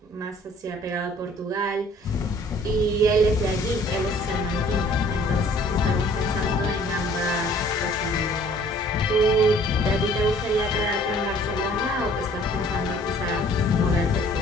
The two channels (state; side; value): normal; both; correlation 0.55